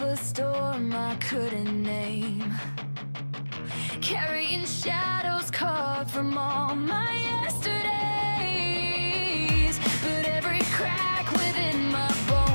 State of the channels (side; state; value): both; inverted; correlation -1.00